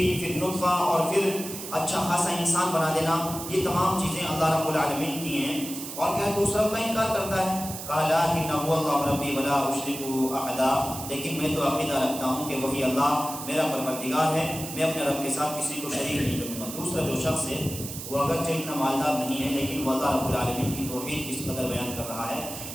پھر نطفہ، اور پھر اچھا خاصا انسان بنا دینا، یہ تمام چیزیں اللہ رب العالمین کی ہیں، اور کیا تو اس رب کا انکار کرتا ہے؟ قال لكن هو الله ربي ولا اشرك احدا، لیکن میں تو عقیدہ رکھتا ہوں کہ وہی اللہ میرا پروردگار ہے، میں اپنے رب کے ساتھ کسی کو شریک نہیں کروں گا۔ دوسرا جو شخص ہے وہ اگرچہ اتنا مالدار نہیں ہے لیکن وہ اللہ رب العالمین کی توحید کس قدر بیان کر رہا ہے،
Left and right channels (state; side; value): noise; right; hiss, 9 dB below the sound